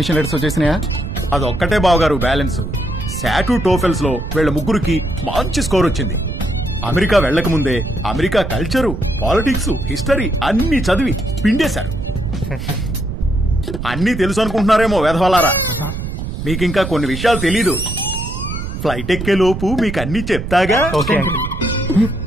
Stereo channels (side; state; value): right; noise; rumble, 6 dB below the sound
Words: లెటర్స్ వచ్చేసినాయా? అదొక్కటే బావగారు బ్యాలెన్స్. శాటు టోఫెల్స్ లో వీళ్ళ ముగ్గురికి మంచి స్కోర్ వచ్చింది. అమెరికా వెళ్లక ముందే అమెరికా కల్చరు, పాలిటిక్స్, హిస్టరీ అన్ని చదివి పిండేశారు. అన్నీ తెలుసు అనుకుంటున్నారేమో వెధవలారా. మీకింకా కొన్ని విషయాలు తెలీదు. ఫ్లైట్ ఎక్కే లోపు మీకు అన్ని చెప్తాగా.